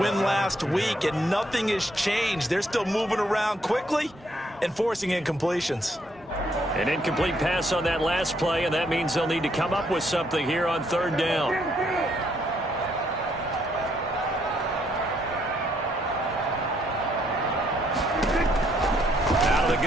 last week, and nothing has changed. They're still moving around quickly and forcing incompletions. An incomplete pass on that last play, and that means they'll need to come up with something here on 3rd down. Out of the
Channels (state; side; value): normal; both; correlation 0.71